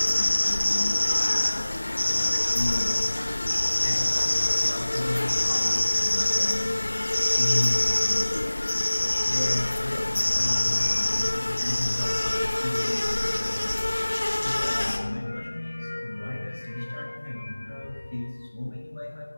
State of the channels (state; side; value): inverted; both; correlation -1.00